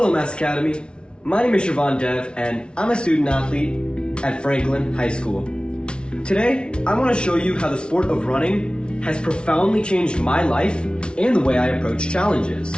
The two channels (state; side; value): late; right; 0.056 ms